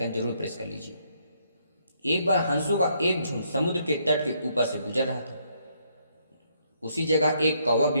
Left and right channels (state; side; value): inverted; both; correlation -0.72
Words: जरूर प्रेस कर लीजिए। एक बार हंसों का एक झुंड समुद्र के तट के ऊपर से गुजर रहा था। उसी जगह एक कौवा